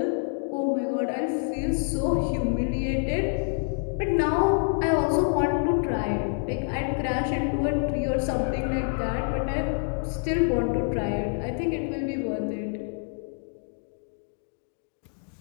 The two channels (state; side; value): silent; right; 60 dB below the other